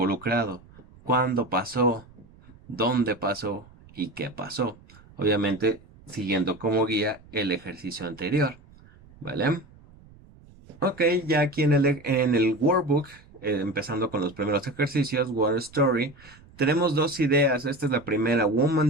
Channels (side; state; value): right; noise; rumble, 24 dB below the sound